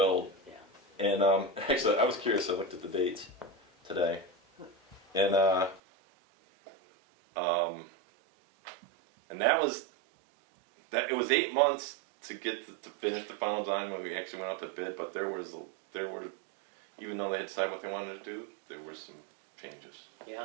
Yeah. And actually, I was curious. I looked at the dates today, and it was 8 months to get to finish the final design when we actually went out to bid. But there were, even though they had decided what they wanted to do, there were some changes.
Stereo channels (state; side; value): drops out; left; at 5.8 s